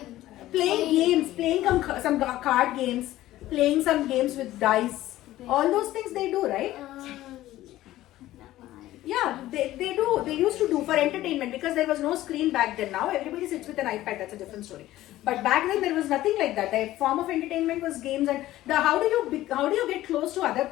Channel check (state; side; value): quieter; right; 15.2 dB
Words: Playing games, playing some card games, playing some games with dice. All those things they do, right? Yeah, they do. They used to do for entertainment because there was no screen back then. Now everybody sits with an iPad. That's a different story. But back then there was nothing like that. The form of entertainment was games, and how do you get close to other